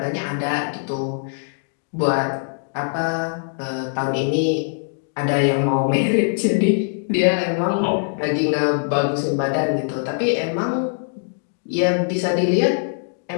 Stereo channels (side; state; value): right; silent; 64 dB below the other